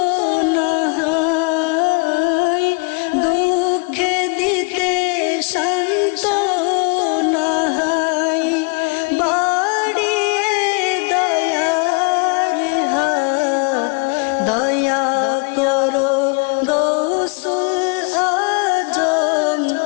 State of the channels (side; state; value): right; quieter; 33.6 dB